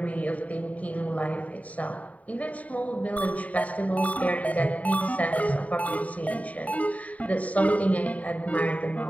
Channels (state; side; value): late; right; 0.069 ms